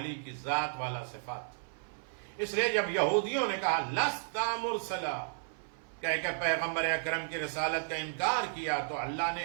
کی ذات والا صفات تھی۔ اس لیے جب یہودیوں نے کہا لستا مرسلا، کہہ کہ پیغمبر اکرم کی رسالت کا انکار کیا، تو اللہ نے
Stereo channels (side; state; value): left; silent; 55 dB below the other